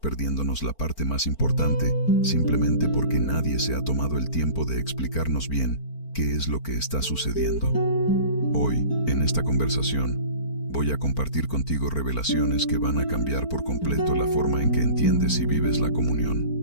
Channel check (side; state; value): right; late; 4.4 ms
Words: la parte más importante, simplemente porque nadie se ha tomado el tiempo de explicarnos bien qué es lo que está sucediendo? Hoy, en esta conversación, voy a compartir contigo revelaciones que van a cambiar por completo la forma en que entiendes y vives la